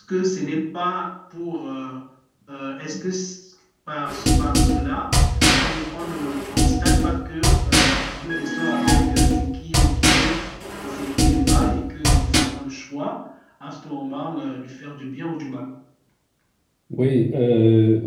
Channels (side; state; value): both; identical; correlation 1.00